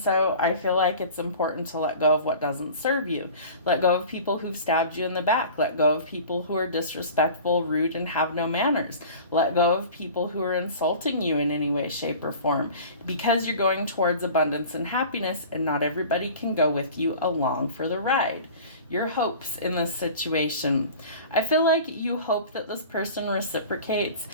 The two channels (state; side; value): inverted; both; correlation -0.40